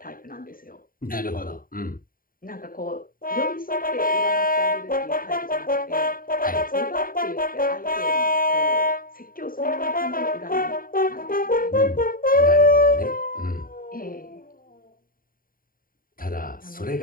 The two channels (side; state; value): right; late; 0.41 ms